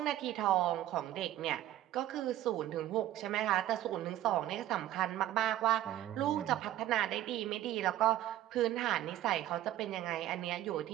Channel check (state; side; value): quieter; left; 13.3 dB